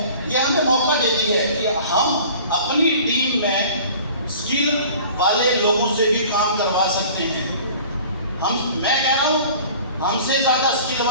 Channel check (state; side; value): inverted; both; correlation -0.45